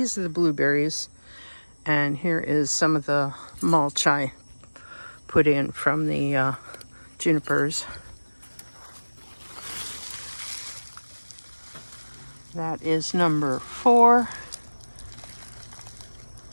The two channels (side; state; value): both; inverted; correlation -1.00